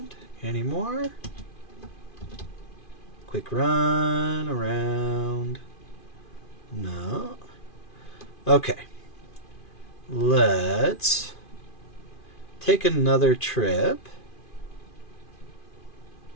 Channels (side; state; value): right; late; 2.5 ms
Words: any more? Quick run around. No. Okay. Let's take another trip.